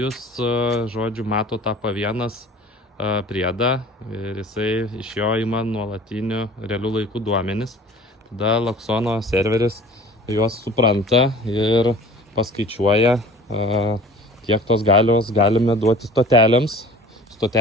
žodžiu, mato tą P1 priedą ir jisai iš jo ima nuolatinių realių laikų duomenis. Tada Loxono serveris juos supranta ir paskaičiuoja, kiek tos galios galime duoti stotelėms.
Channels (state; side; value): normal; both; correlation 0.44